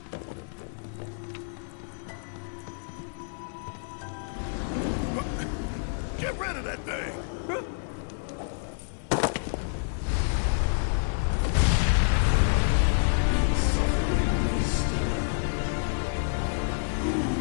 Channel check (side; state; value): right; silent; 59 dB below the other